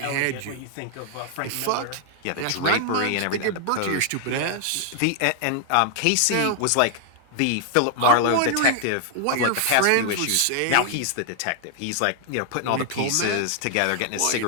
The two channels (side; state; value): both; different; correlation 0.00